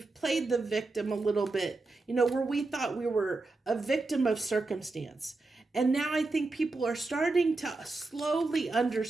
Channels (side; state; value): left; quieter; 3.4 dB